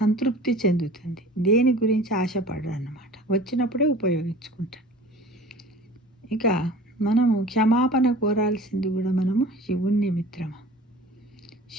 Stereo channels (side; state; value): both; normal; correlation 0.42